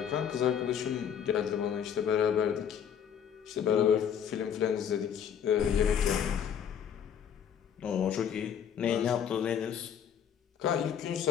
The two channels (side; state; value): right; quieter; 8.4 dB